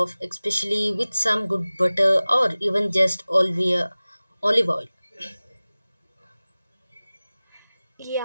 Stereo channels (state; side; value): inverted; both; correlation -0.98